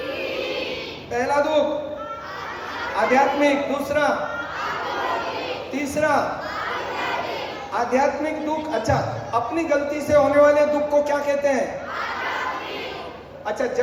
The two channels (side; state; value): both; identical; correlation 1.00